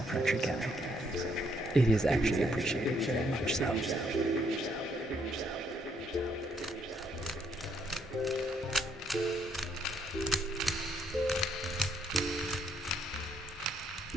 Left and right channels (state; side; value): normal; both; correlation 0.70